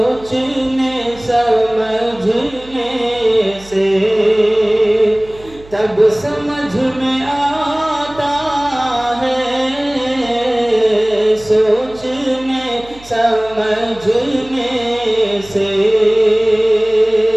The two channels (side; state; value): right; noise; hum, 21 dB below the sound